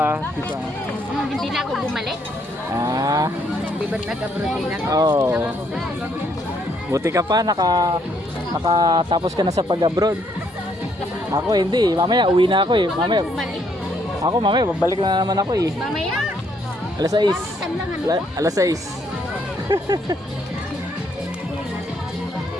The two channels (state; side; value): normal; both; correlation 0.71